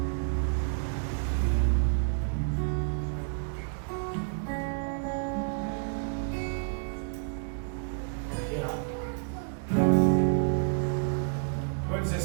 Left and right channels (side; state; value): left; silent; digital silence